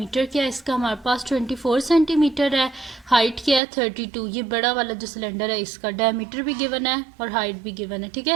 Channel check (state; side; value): drops out; left; at 3.6 s